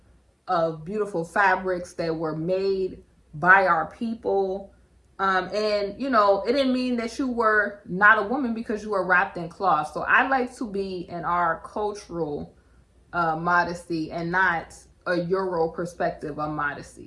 of beautiful fabrics that were made by our people. And you know, it didn't mean that you were not a woman because you were wrapped in cloth. So I like to be in our cultural modesty and not a Euro perspective of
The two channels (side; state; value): both; identical; correlation 1.00